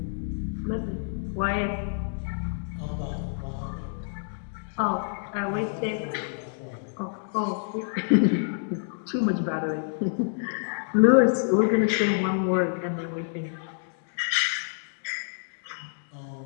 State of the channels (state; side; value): silent; right; digital silence